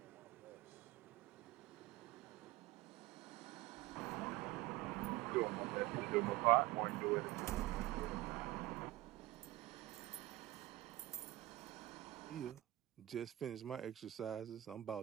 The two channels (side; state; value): left; quieter; 17.3 dB